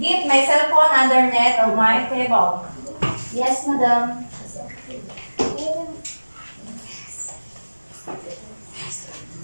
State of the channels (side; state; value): both; inverted; correlation -1.00